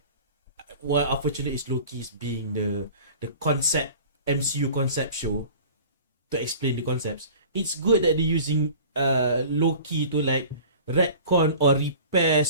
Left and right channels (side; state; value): both; inverted; correlation -0.43